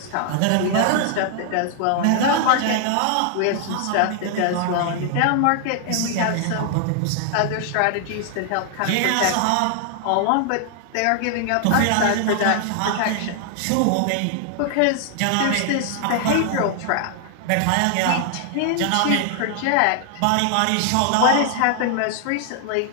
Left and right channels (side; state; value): both; different; correlation 0.00